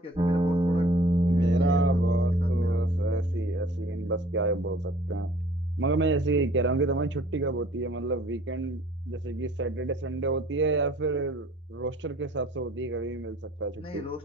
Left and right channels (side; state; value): both; normal; correlation 0.54